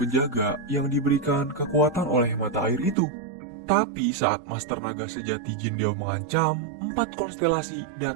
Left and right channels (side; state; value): left; drops out; at 3.0 s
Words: yang diberikan kekuatan oleh mata air itu. Tapi saat Master Naga Sejati Jin Diao mengancam, 4 konstelasi